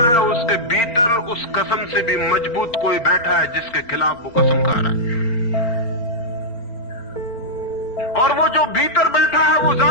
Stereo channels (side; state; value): right; late; 4.3 ms